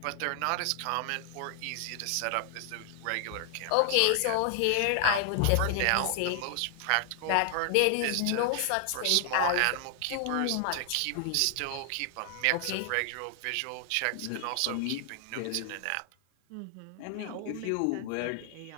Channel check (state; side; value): different; both; correlation 0.00